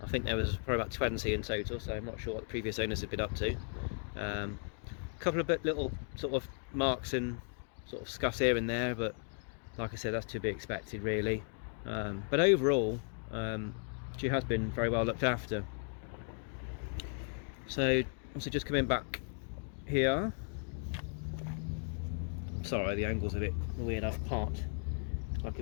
I think there was probably about 20 in total, so I'm not sure what the previous owners had been up to. A couple of little sort of marks and sort of scuffs here and there, but like I said, that's to be expected really. But overall, she has been very well looked after. So also just coming back here. Sorry, the angle's a bit weird. I've parked like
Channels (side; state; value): right; silent; 54 dB below the other